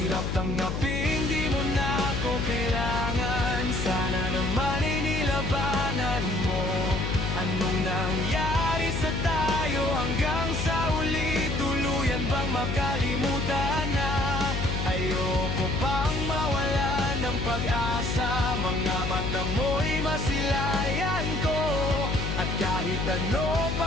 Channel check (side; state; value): left; noise; hum, 2 dB below the sound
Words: tanggapin, di mo na ako kailangan. Sana naman ay nilabanan mo. Anong nangyari sa tayo hanggang sa uli? Tuluyan bang makalimutan na? Ayoko pang mawala ng pag-asa. Mga mata mo'y masilayan ko. At kahit ano